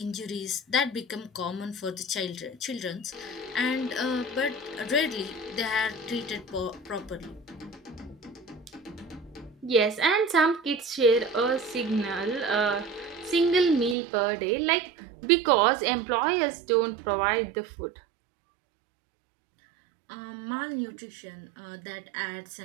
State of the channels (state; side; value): drops out; left; at 14.0 s